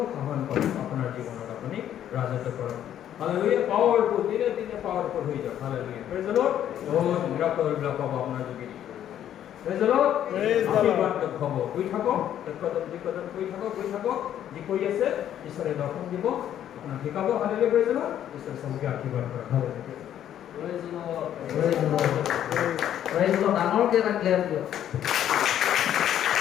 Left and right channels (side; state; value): right; quieter; 10.7 dB